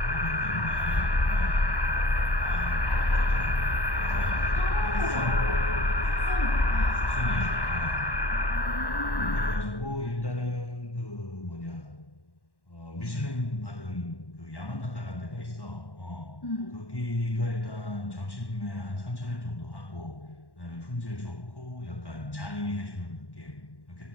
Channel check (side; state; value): right; late; 1.1 ms